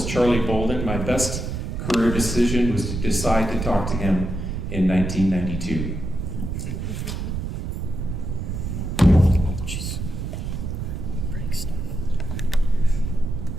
Charlie Bolden. My best career decision was to decide to talk to him in 1992. Break stuff.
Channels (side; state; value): right; noise; rumble, 4 dB below the sound